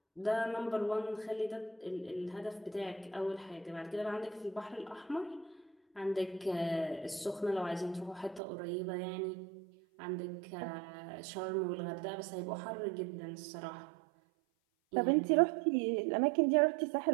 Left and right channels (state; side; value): drops out; left; at 8.4 s